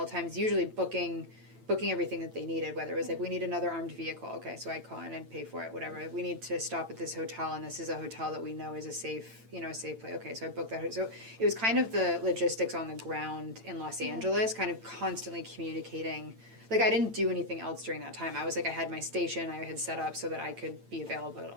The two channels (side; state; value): left; late; 8.9 ms